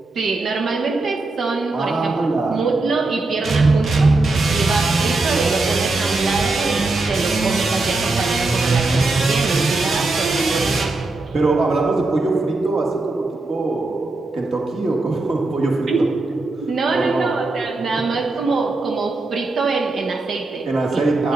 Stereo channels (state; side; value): quieter; left; 3.2 dB